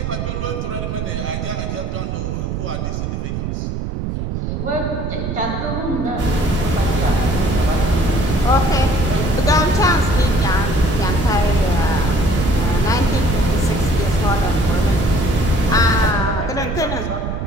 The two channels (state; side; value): noise; right; rumble, 3 dB below the sound